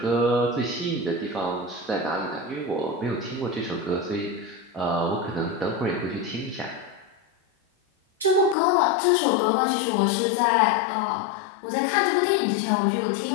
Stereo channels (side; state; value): right; drops out; at 8.6 s